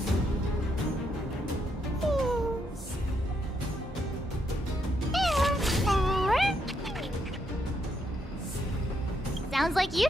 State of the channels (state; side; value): normal; both; correlation 0.77